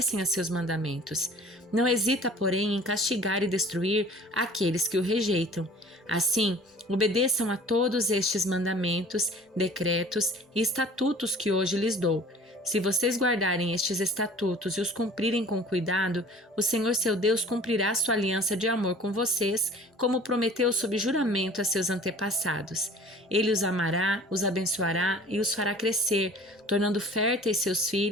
a seus mandamentos. Não hesita, porém, em castigar e destruir aqueles que o rejeitam. Assim, obedeçam a todos estes mandamentos, decretos e estatutos que hoje lhes dou. Se vocês guardarem estes estatutos e os cumprirem com cuidado, o Senhor seu Deus cumprirá sua aliança de amor com vocês, como prometeu sob juramento a seus antepassados. Ele os amará, os abençoará e os fará crescer, tornando férteis seus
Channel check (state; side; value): normal; both; correlation 0.47